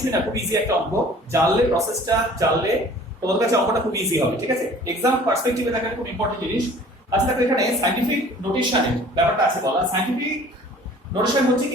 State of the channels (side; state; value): both; normal; correlation 0.50